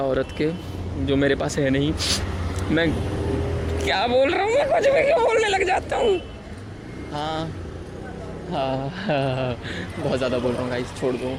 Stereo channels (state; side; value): identical; both; correlation 1.00